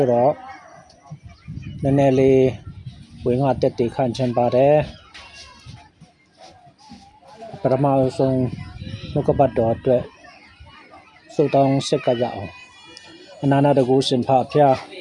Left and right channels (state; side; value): identical; both; correlation 1.00